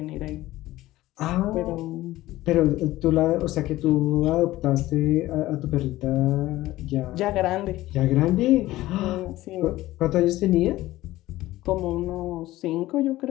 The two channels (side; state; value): right; quieter; 16.6 dB